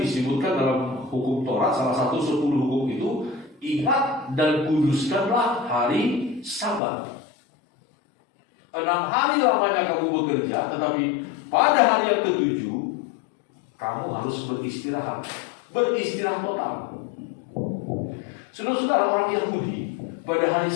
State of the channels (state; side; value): drops out; right; at 6.8 s